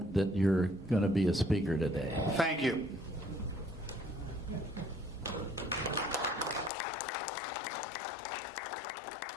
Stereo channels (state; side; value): drops out; right; at 6.7 s